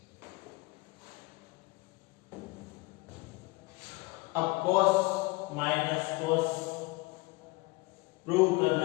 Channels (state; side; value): quieter; right; 24.0 dB